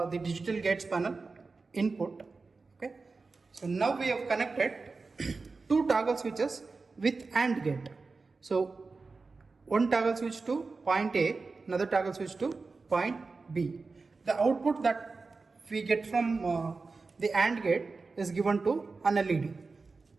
digital gates panel input. Okay. So now we have connected two toggle switches with AND gate. So one toggle switch to point A, another toggle switch to point B. The output that we get from the AND gate is given to an LED.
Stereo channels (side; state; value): left; quieter; 4.1 dB